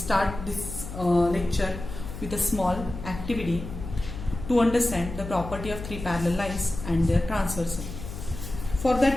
this lecture with a small activity to understand the property of three parallel lines and their transversal. For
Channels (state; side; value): noise; left; hum, 9 dB below the sound